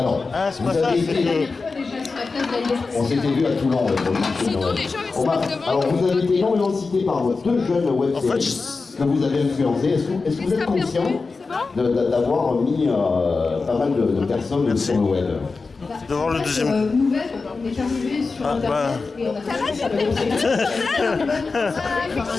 vous avez été... On s'était vu à Toulon. Alors vous avez été énormément cité par deux jeunes web séries que vous avez influencés. Est-ce que vous êtes conscient d'avoir mis pas mal de personnes sur le web? De voir le deuxième. Nouvelle, on est arrivé sur Internet et on a fait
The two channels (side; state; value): right; quieter; 4.2 dB